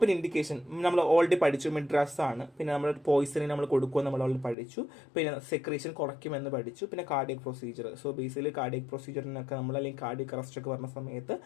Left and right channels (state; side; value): drops out; right; at 4.5 s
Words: ഇൻഡിക്കേഷൻ നമ്മൾ ഓൾറെഡി പഠിച്ചു, മിഡ്രാസ് ആണ്. പിന്നെ നമ്മൾ പോയിസണിന് നമ്മൾ കൊടുക്കുമെന്ന് നമ്മൾ ഓൾറെഡി പഠിച്ചു. പിന്നെ സെക്രീഷൻ കുറയ്ക്കുമെന്ന് പഠിച്ചു. പിന്നെ cardiac procedure. So basically cardiac പ്രൊസീജിയറിനൊക്കെ നമ്മൾ അല്ലെങ്കിൽ കാർഡിയക് അറസ്റ്റ് ഒക്കെ വരുന്ന സമയത്ത്